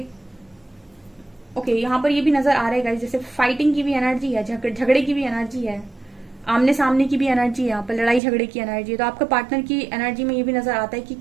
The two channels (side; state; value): left; drops out; at 8.2 s